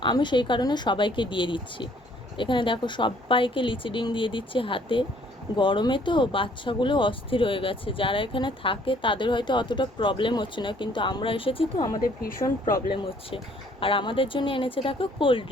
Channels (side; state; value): both; normal; correlation 0.61